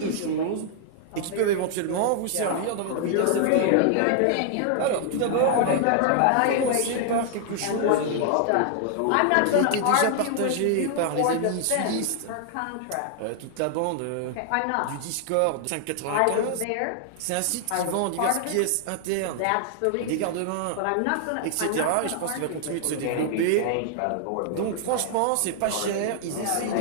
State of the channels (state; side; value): different; both; correlation 0.00